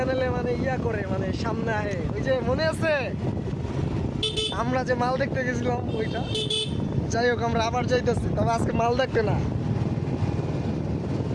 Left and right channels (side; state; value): both; identical; correlation 1.00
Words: মানে ইয়া করে মানে সামনে আহে, ওই যে মনে আছে আমরা যে মাল দেখতে গেছিলাম ওইটা। যাই হোক আমরা আবার যাইতেছি, তবে আজকে মাল দেখতে না,